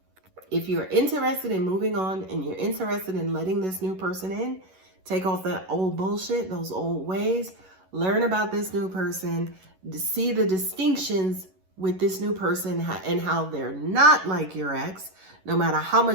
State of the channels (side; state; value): left; late; 11 ms